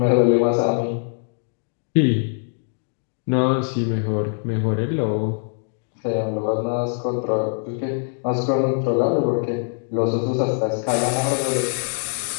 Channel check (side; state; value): right; silent; 64 dB below the other